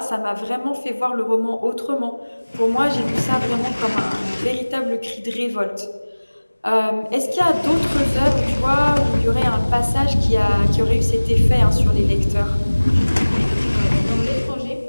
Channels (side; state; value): both; inverted; correlation -1.00